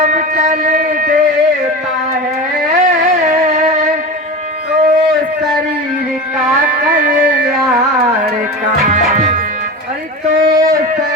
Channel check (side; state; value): both; normal; correlation 0.27